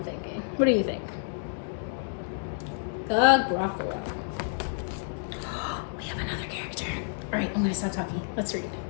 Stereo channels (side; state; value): right; silent; 58 dB below the other